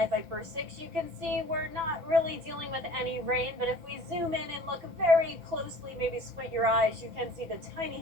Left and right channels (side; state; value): left; late; 5.9 ms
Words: Viper 6, you can see we're not really dealing with any rain, but if we zoom in and look very closely, maybe squint your eyes, you can see the